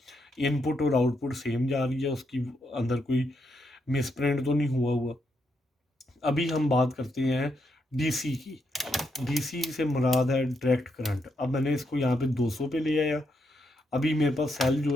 इनपुट और आउटपुट सेम जा रही है, उसकी अंदर कोई मिसप्रिंट तो नहीं हुआ। अभी हम बात करते हैं डीसी की। डीसी से मुराद है डायरेक्ट करंट। अब मैंने इसको यहाँ पे 200 पे ले आया। अभी मेरे पास सेल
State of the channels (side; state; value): both; normal; correlation 0.80